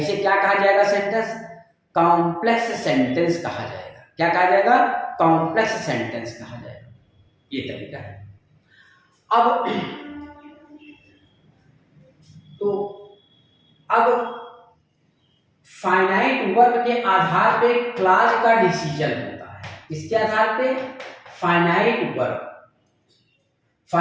क्या कहा जाएगा, सेंटेंस, कॉम्प्लेक्स सेंटेंस कहा जाएगा। क्या कहा जाएगा, कॉम्प्लेक्स सेंटेंस कहा जाएगा। ये तरीका है। अब फाइनाइट वर्ब के आधार पे क्लॉज का डिसीजन होता है। इसके आधार पे फाइनाइट वर्ब,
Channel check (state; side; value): identical; both; correlation 1.00